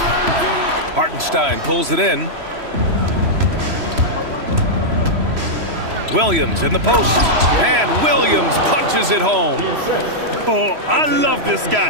Hartenstein pulls it in. Williams in the post. And Williams punches it home. Oh, I love this guy.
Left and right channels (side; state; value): left; late; 3.0 ms